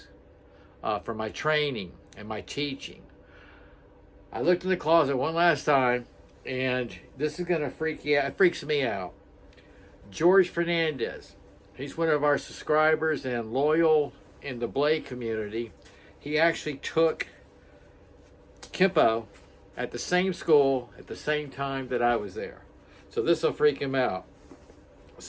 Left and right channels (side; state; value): both; identical; correlation 1.00